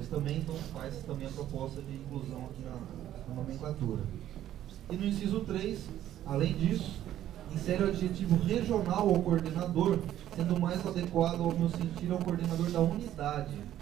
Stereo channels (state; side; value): quieter; left; 12.2 dB